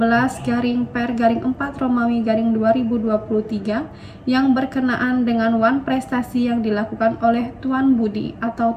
yang berkenaan dengan wan prestasi yang dilakukan oleh Tuan Budi atau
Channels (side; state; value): both; identical; correlation 1.00